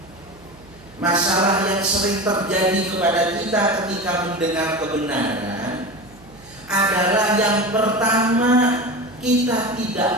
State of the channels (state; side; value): noise; right; hum, 25 dB below the sound